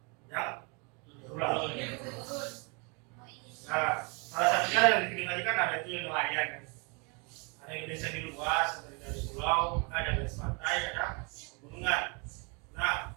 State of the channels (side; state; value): left; quieter; 32.5 dB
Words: yang berulang. Nah, salah satunya yang dibikin tadi kan ada itu yang nelayan kan. Ada Indonesia di luas, seperti dari pulau, ada garis pantai, ada pegunungan. Nah,